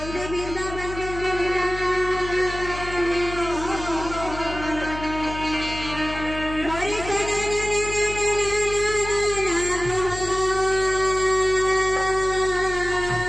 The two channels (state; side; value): noise; left; hum, 10 dB below the sound